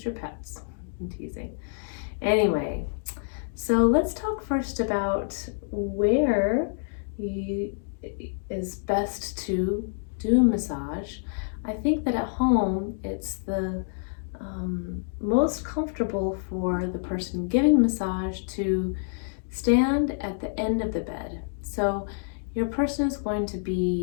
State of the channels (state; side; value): silent; right; digital silence